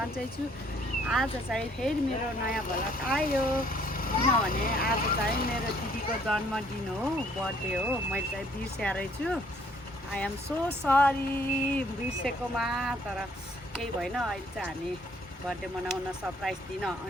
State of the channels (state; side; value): normal; both; correlation 0.63